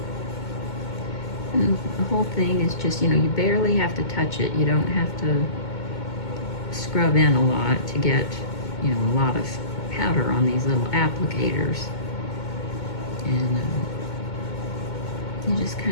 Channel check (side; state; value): right; late; 2.2 ms